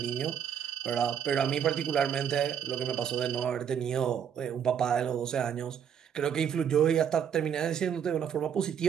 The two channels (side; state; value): left; quieter; 8.3 dB